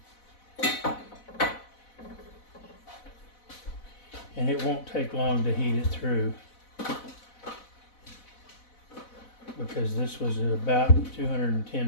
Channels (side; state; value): right; late; 4.0 ms